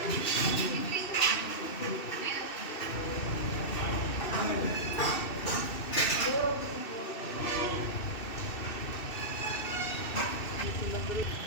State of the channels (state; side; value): late; right; 2.6 ms